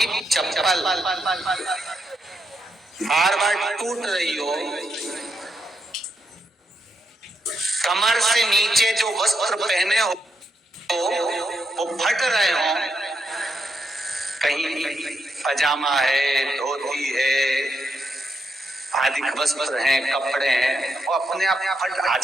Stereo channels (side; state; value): both; normal; correlation 0.81